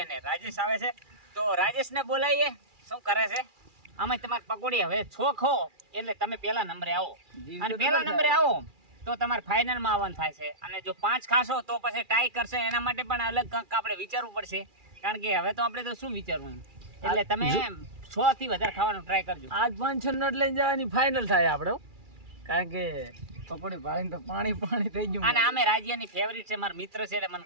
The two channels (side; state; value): left; late; 2.4 ms